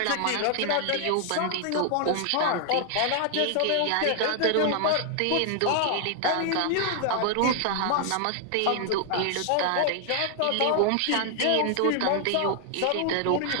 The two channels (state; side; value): different; both; correlation 0.00